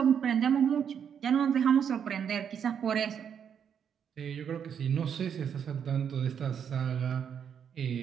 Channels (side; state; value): left; quieter; 7.9 dB